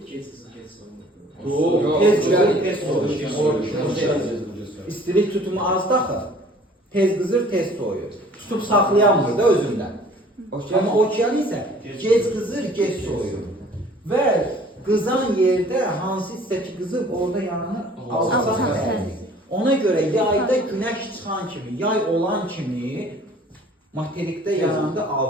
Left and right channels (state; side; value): normal; both; correlation 0.52